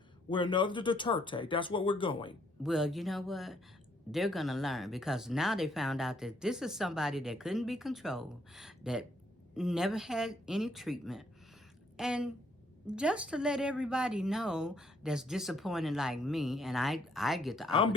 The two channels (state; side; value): normal; both; correlation 0.69